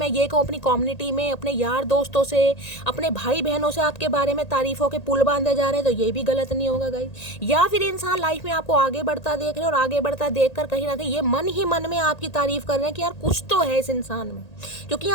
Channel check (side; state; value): right; late; 1.8 ms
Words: ये कहूँ अपनी कम्युनिटी में, अपने यार दोस्तों से, अपने भाई बहनों से आपके बारे में तारीफों के पुल बांधे जा रहे हैं, तो ये भी गलत नहीं होगा गाइस। या फिर इंसान लाइफ में आपको आगे बढ़ता देख रहे हैं और आगे बढ़ता देख कर कहीं ना कहीं ये मन ही मन में आपकी तारीफ कर रहे हैं कि यार कुछ तो है इस इंसान में, क्योंकि